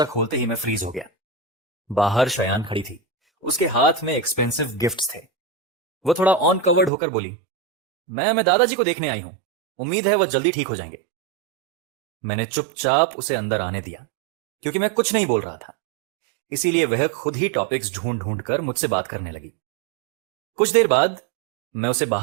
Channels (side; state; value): left; drops out; at 6.9 s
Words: खोलते ही मैं फ्रीज हो गया। बाहर शयान खड़ी थी। उसके हाथ में एक्सपेंसिव गिफ्ट्स थे। वो थोड़ा ऑन कवर्ड होकर बोली, मैं दादाजी को देखने आई हूं, उम्मीद है वह जल्दी ठीक हो जाएंगे। मैंने चुपचाप उसे अंदर आने दिया, क्योंकि मैं कुछ नहीं बोल रहा था। इसीलिए वह खुद ही टॉपिक्स ढूंढ ढूंढ कर मुझसे बात करने लगी। कुछ देर बाद मैं उसे